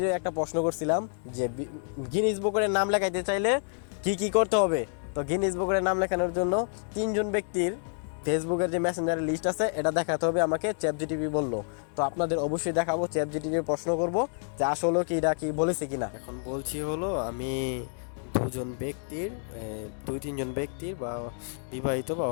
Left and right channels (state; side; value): silent; right; digital silence